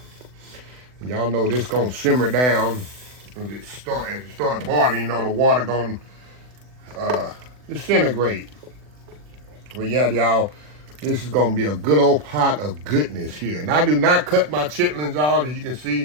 Y'all know this gonna simmer down as it start boiling. You know the water gonna disintegrate. Well, yeah, y'all, this is gonna be a good old pot of goodness here. And I do not cut my chitlins out, as you can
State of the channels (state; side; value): late; left; 40 ms